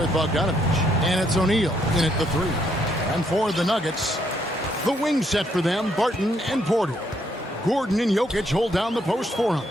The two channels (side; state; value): both; normal; correlation 0.72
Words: Bogdanovich. And it's O'Neal in at the three. And for the Nuggets, the wing set for them, Barton and Porter. Gordon and Jokic hold down the post for him.